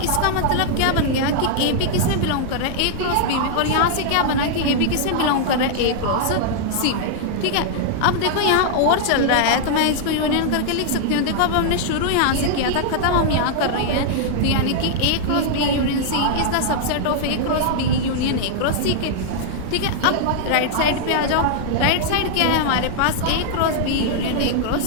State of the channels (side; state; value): both; different; correlation -0.01